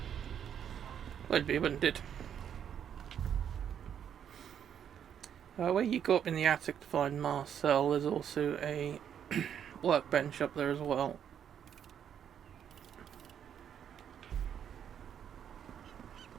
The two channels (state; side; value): quieter; left; 8.8 dB